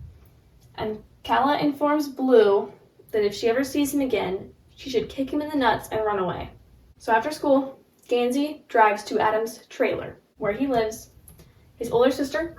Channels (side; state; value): both; identical; correlation 1.00